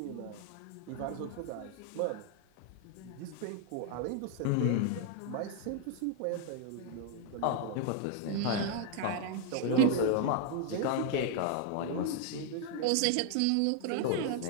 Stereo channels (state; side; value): different; both; correlation 0.00